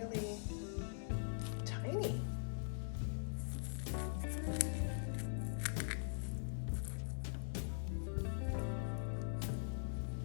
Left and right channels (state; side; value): silent; right; digital silence